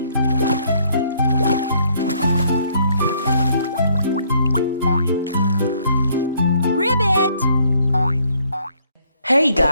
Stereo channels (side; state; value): both; inverted; correlation -0.66